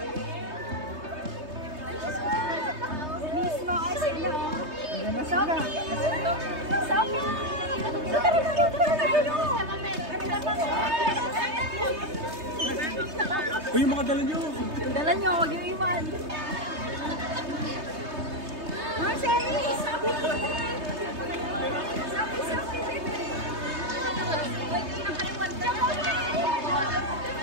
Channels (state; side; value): late; left; 3.2 ms